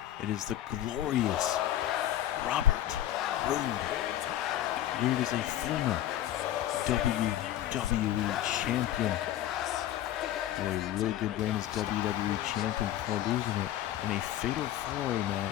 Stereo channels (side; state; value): right; quieter; 12.7 dB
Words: it is the glorious Robert Roode. Roode is a former WWE champion. Had a really good reign as WWE champion before losing it in a fatal 4-way